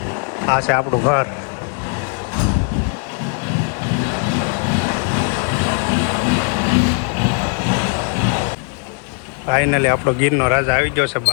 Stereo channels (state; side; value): quieter; right; 39.3 dB